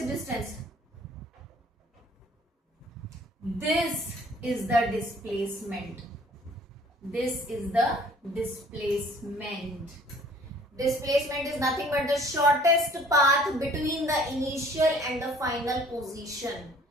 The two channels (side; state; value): both; normal; correlation 0.54